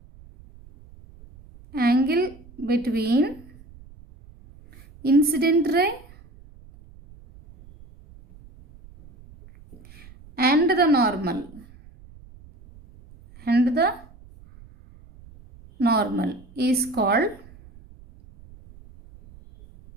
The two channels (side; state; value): right; noise; rumble, 23 dB below the sound